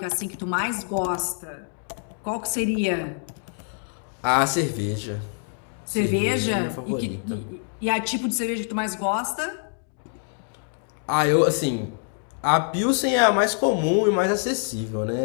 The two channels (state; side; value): silent; right; 62 dB below the other